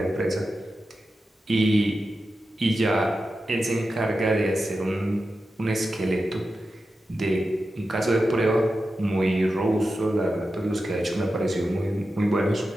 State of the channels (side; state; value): both; normal; correlation 0.91